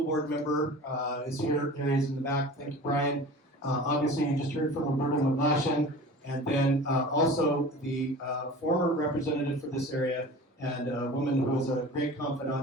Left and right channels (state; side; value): normal; both; correlation 0.38